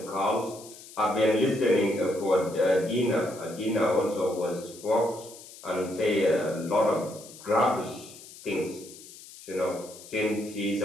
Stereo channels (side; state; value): left; noise; hiss, 18 dB below the sound